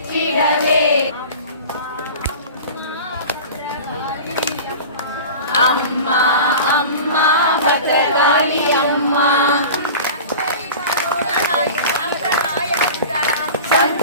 அம்மா அம்மா பத்ரகாளி அம்மா.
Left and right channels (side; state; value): both; inverted; correlation -0.35